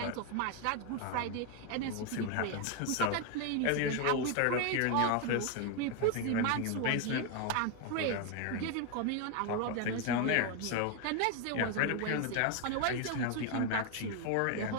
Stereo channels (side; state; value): both; different; correlation 0.01